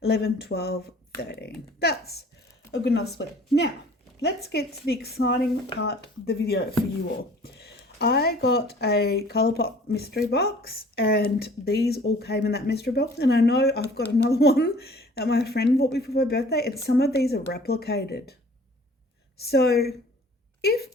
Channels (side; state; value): both; normal; correlation 0.51